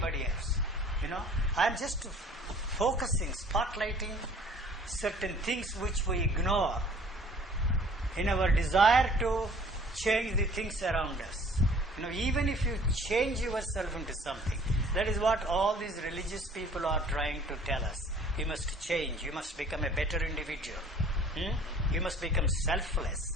else. I am just focusing, spotlighting certain things which we ignore in our desire to change the things around us. Even if you change yourself into something, that is what all these religious people are trying to tell us. You must change, you must become a better individual. You must become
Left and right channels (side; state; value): both; normal; correlation 0.52